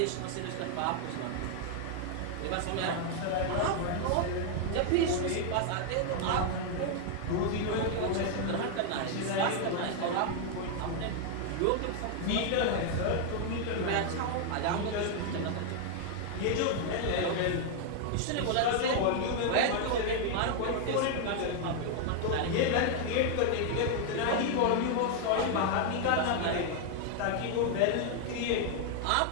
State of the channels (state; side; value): different; both; correlation 0.00